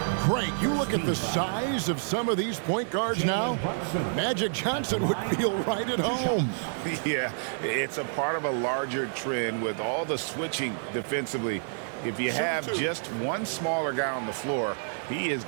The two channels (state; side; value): silent; left; digital silence